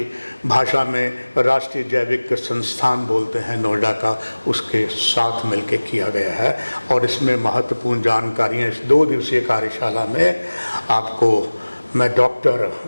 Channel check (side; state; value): both; inverted; correlation -1.00